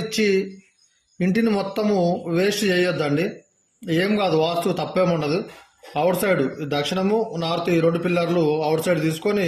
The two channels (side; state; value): both; identical; correlation 1.00